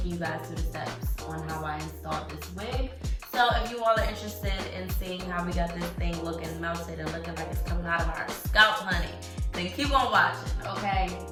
you guys through the steps on how I installed this wig. So if you all are interested in seeing how we got this thing looking melted and looking like it's coming out of our scalp, honey, then keep on watching, okay?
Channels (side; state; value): both; identical; correlation 1.00